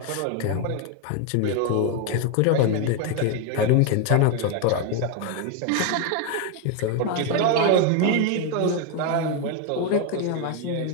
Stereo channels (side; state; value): both; different; correlation 0.01